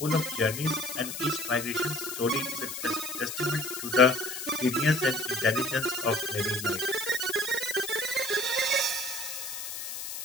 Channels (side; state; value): left; noise; hiss, 7 dB below the sound